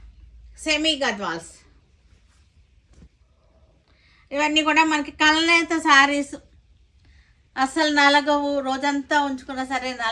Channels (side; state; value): both; identical; correlation 1.00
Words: సెమీ గద్వాల్స్. ఇవన్నీ కూడా మనకి కల్నేత శారీస్. అసలు నలగవు, రోజంతా ఉంచుకున్నా సరే